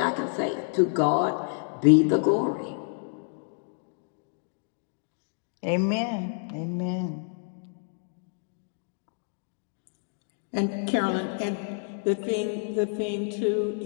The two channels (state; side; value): silent; right; digital silence